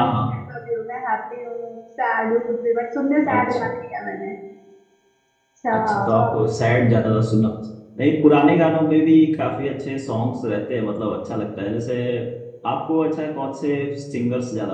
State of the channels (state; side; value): identical; both; correlation 1.00